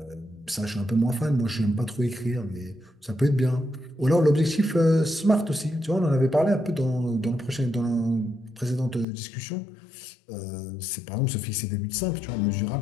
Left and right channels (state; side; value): drops out; right; at 9.1 s